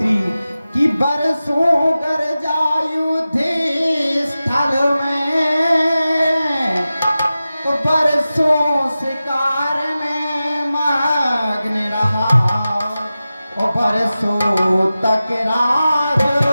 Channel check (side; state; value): both; inverted; correlation -0.95